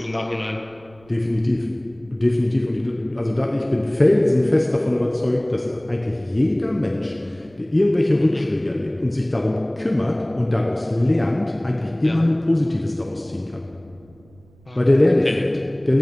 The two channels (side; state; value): right; noise; rumble, 28 dB below the sound